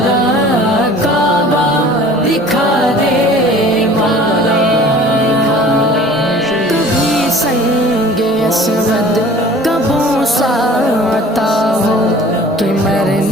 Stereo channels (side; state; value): both; normal; correlation 0.46